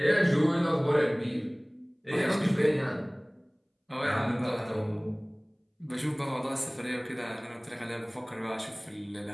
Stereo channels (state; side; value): identical; both; correlation 1.00